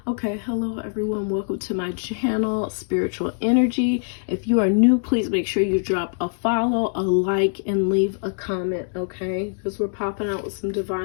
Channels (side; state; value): right; silent; digital silence